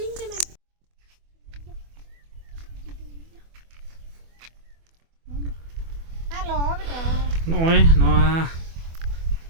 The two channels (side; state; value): left; late; 24 ms